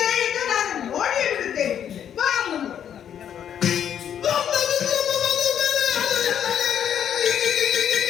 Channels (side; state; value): right; quieter; 9.3 dB